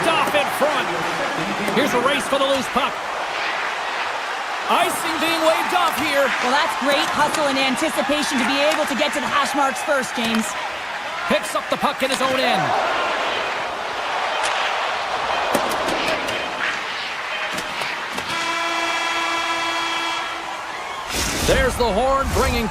off in front. Here's a race for the loose puck. Icing being waved off here. Well, that's great hustle and anticipation to be able to get to the hash marks first, James. Picks up the puck in his own end. There's the horn, bringing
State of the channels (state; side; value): identical; both; correlation 1.00